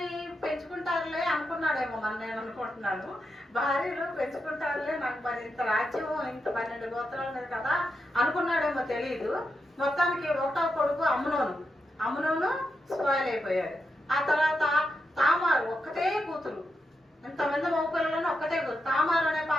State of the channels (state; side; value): normal; both; correlation 0.85